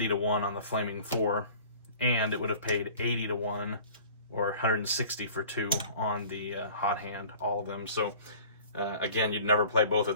to 1 on the Flaming 4, and it would have paid 80 to 1 or 160 for 2 on the hot hand, all of them. So again, you'd never play both of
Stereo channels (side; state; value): both; inverted; correlation -0.46